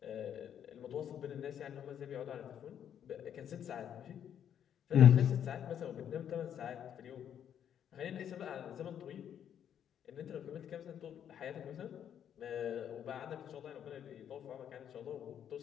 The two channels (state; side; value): quieter; right; 9.3 dB